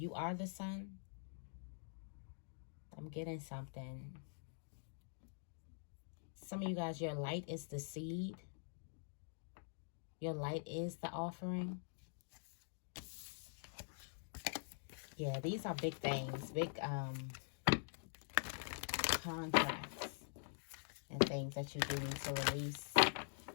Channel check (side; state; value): right; silent; digital silence